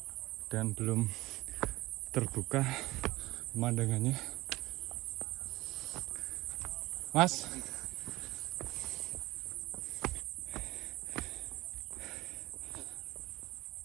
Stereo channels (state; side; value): quieter; left; 19.0 dB